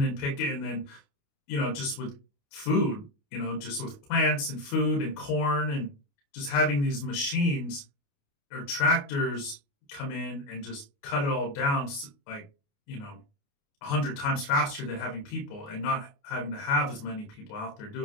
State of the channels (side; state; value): right; late; 28 ms